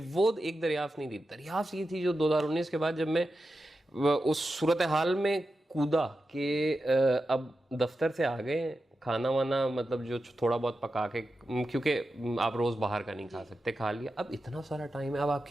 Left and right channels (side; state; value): both; normal; correlation 0.91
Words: एक दरियाफ्त नहीं थी, दरियाफ्त ये थी जो 2019 के बाद जब मैं उस सूरत हाल में कूदा कि अब दफ्तर से आ गए, खाना वाना मतलब जो थोड़ा बहुत पका के, क्योंकि आप रोज बाहर का नहीं खा सकते, खा लिया, अब इतना सारा टाइम है, अब आप